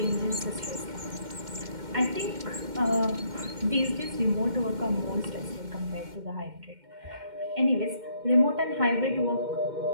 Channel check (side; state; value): left; late; 2.1 ms